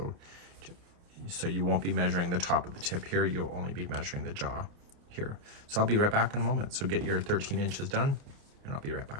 you won't be measuring the top of the tip here, you'll only be measuring the jaw here. So I'll be right back in a moment. So get your 13 inches done and I'll be right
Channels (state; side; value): late; left; 29 ms